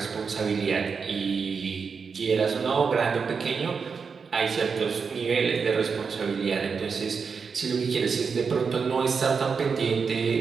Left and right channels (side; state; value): left; quieter; 5.6 dB